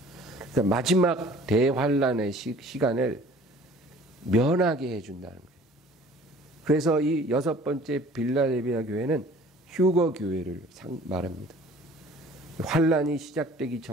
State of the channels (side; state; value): both; normal; correlation 0.50